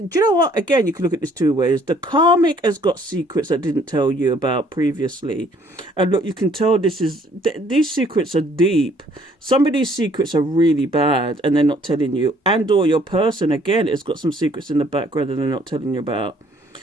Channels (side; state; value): both; normal; correlation 0.61